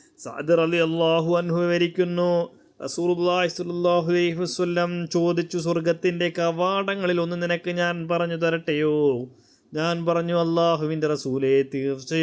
സഅദ് റളിയല്ലാഹു അൻഹു വിവരിക്കുന്നു, റസൂലുള്ളാഹി സ്വല്ലല്ലാഹു അലൈഹി വസല്ലം ചോദിച്ചു, സ്വർഗത്തിൻ്റെ കവാടങ്ങളിൽ ഒന്ന് നിനക്ക് ഞാൻ പറഞ്ഞു തരട്ടെയോ? ഞാൻ പറഞ്ഞു, അല്ലാഹുവിൻ്റെ റസൂലേ,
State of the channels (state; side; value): identical; both; correlation 1.00